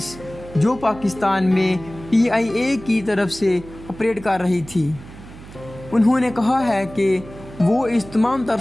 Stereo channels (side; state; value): right; noise; hum, 17 dB below the sound